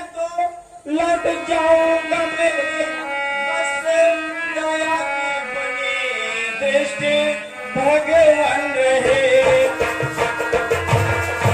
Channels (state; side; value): identical; both; correlation 1.00